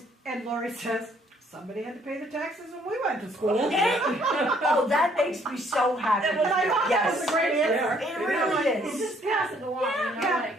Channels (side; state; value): both; normal; correlation 0.64